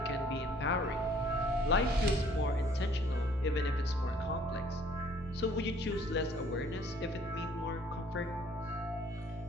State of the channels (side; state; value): both; normal; correlation 0.59